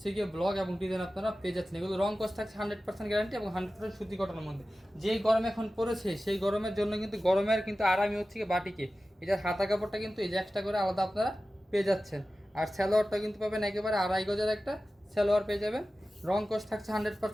গিয়ে ব্লক এবং ডিজাইন আপনারা পেয়ে যাচ্ছেন। এগুলো রং কস থাকছে 100% গ্যারান্টি এবং 100% সুতি কটনের মধ্যে। যেই গরম এখন পড়েছে সেই গরমের জন্য কিন্তু গরমের কিন্তু আরামই হচ্ছে গিয়ে বাটিকে। এটার হাতা কাপড়টা কিন্তু এই যে এক্সট্রা করে আলাদা আপনারা পেয়ে যাচ্ছেন। আর সালোয়ারটা কিন্তু পাবেন একেবারে 2.5 গজের একটা সালোয়ার পেয়ে যাবেন। রং কস থাকছে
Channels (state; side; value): normal; both; correlation 0.95